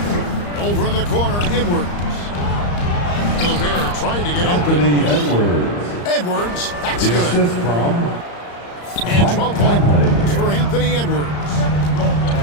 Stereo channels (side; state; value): right; late; 34 ms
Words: Over in the corner, Edwards. Gobert trying to get Anthony open. Edwards. Edwards, that's The good. assist from And 12 points for Anthony Edwards.